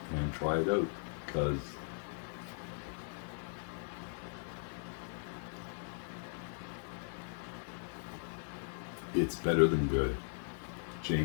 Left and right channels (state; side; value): silent; right; digital silence